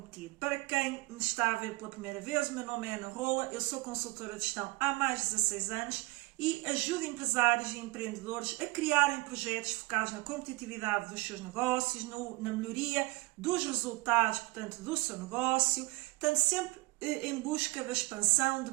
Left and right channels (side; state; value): left; quieter; 22.8 dB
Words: Para quem me está a ver pela primeira vez, o meu nome é Ana Rola, eu sou consultora de gestão há mais de 16 anos e ajudo empresários e empreendedores a criarem projetos focados na competitividade dos seus negócios, na melhoria dos resultados, portanto, do seu negócio, portanto, sempre em busca da expansão, de